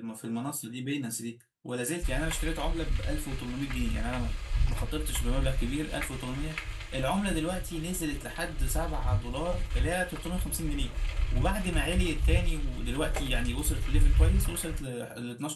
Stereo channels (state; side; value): identical; both; correlation 1.00